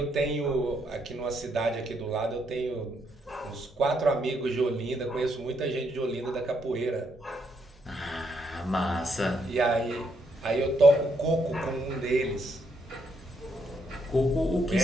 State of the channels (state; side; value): normal; both; correlation 0.75